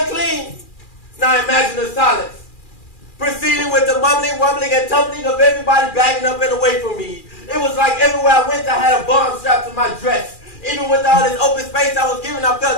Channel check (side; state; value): right; late; 2.4 ms